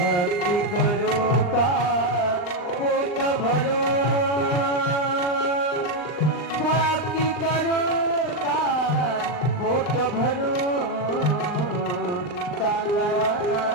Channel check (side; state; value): right; late; 39 ms